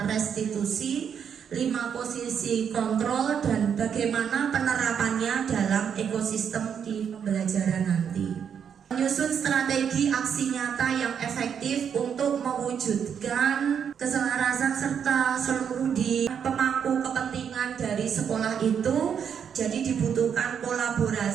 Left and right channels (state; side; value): quieter; left; 7.7 dB